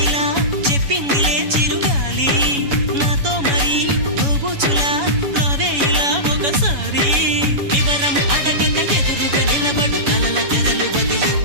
ఇలా చెప్పిందిలే చిరుగాలి, నాతో మరి నోబుచులా రావే ఇలా ఒకసారి. వివరం అడగక ఎదురుగా నిలబడు కలల తెరలు వదిలి,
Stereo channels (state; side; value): late; left; 7.1 ms